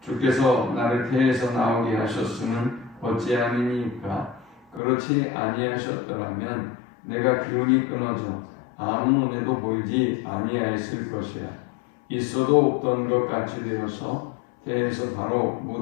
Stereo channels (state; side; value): drops out; right; at 4.8 s